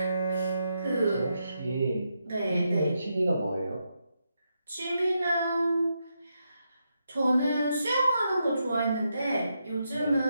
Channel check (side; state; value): both; inverted; correlation -0.83